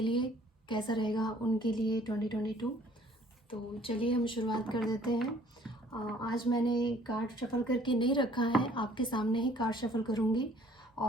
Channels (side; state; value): both; normal; correlation 0.57